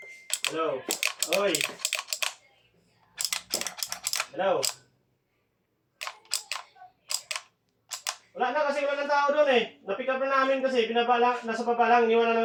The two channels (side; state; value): both; identical; correlation 1.00